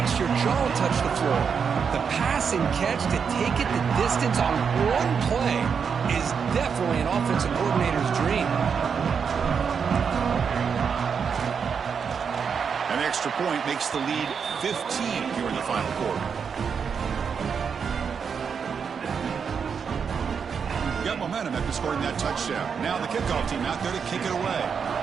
your jaw touch the floor. The pass and catch to take it the distance on one play is definitely an offensive coordinator's dream. An extra point makes the lead 15 here in the final quarter. Got momentum after scoring that touchdown. Now the kickoff team out there to kick it away.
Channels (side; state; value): left; quieter; 6.5 dB